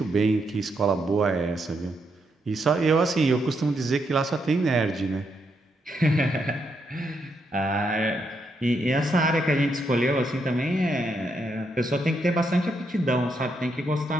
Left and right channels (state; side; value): normal; both; correlation 0.79